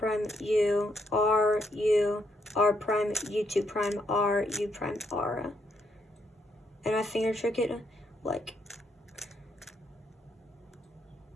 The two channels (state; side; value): normal; both; correlation 0.76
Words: U, R, U, R prime, U2 prime, R, U prime, R. And I finger trick it like